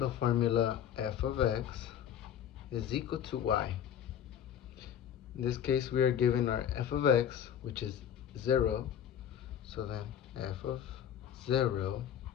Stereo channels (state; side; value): quieter; right; 9.4 dB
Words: formula f of x is equal to y. In this case, we are given our f of x, which is 0. So then f of 0.